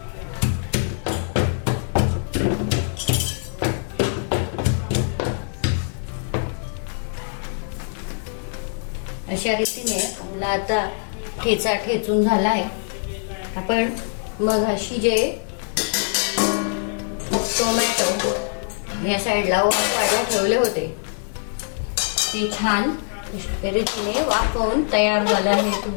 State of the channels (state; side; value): silent; right; 63 dB below the other